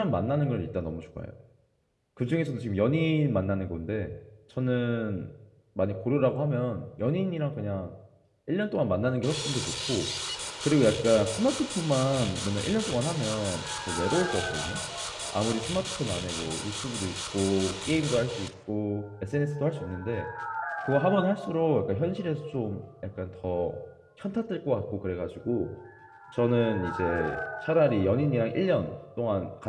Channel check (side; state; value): both; identical; correlation 1.00